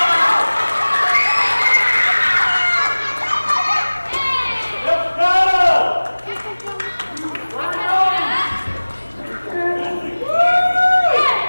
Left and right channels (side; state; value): both; inverted; correlation -1.00